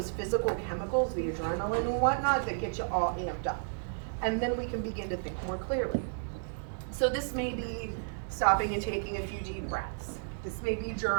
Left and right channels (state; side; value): silent; left; 56 dB below the other